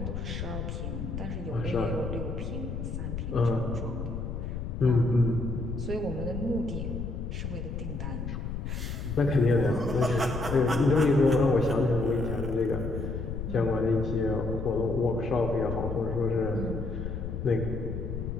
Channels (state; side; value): noise; left; rumble, 5 dB below the sound